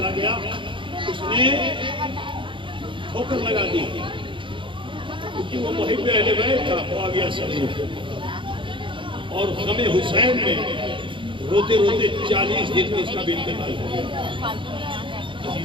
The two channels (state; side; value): late; left; 0.24 ms